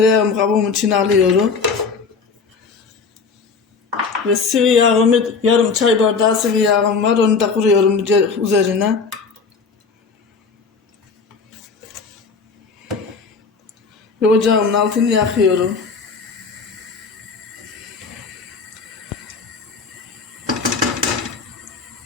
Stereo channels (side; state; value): right; quieter; 4.9 dB